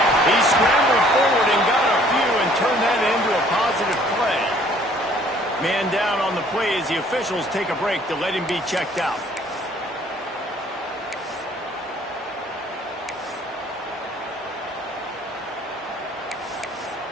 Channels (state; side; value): normal; both; correlation 0.58